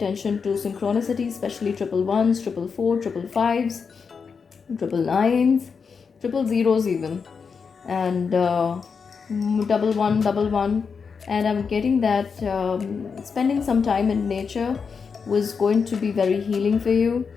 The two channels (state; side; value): quieter; right; 5.7 dB